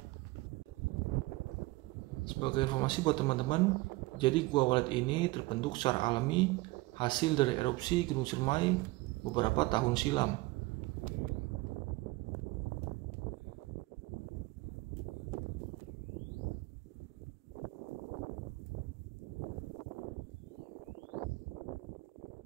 Sebagai informasi buat teman-teman, jadi Gua Walet ini terbentuk secara alami hasil dari erupsi Gunung Ciremai beberapa tahun silam.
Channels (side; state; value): left; quieter; 21.3 dB